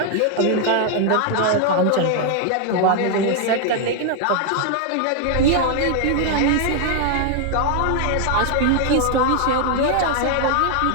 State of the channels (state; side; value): different; both; correlation 0.00